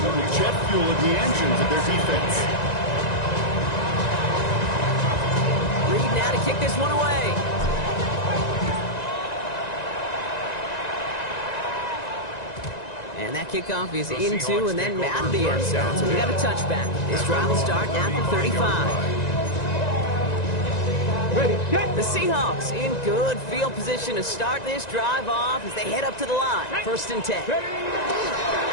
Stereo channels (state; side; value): late; right; 1.9 ms